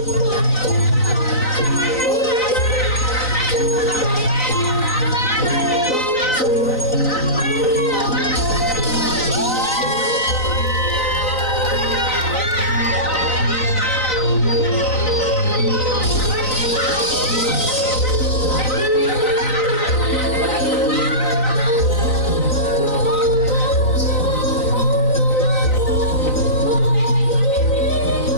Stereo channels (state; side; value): late; right; 3.9 ms